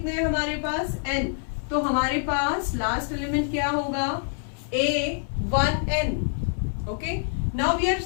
हैं हमारे पास, n। तो हमारे पास लास्ट एलिमेंट क्या होगा, a1n। Okay, now we are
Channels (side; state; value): right; silent; 58 dB below the other